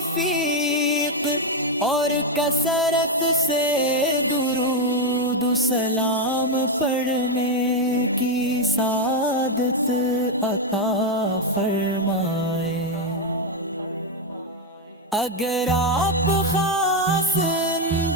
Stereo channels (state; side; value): normal; both; correlation 0.03